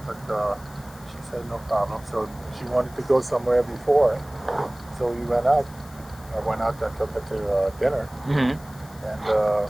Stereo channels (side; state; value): left; noise; hiss, 23 dB below the sound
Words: but she said no problem. So she wanted to go somewhere before, so we went out. I went out and took her to dinner, and